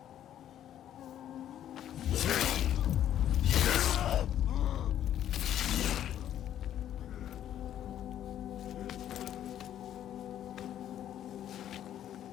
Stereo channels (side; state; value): right; quieter; 11.0 dB